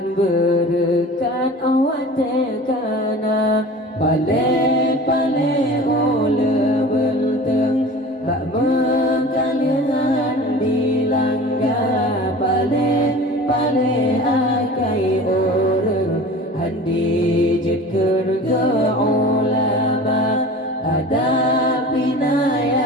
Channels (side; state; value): both; normal; correlation 0.39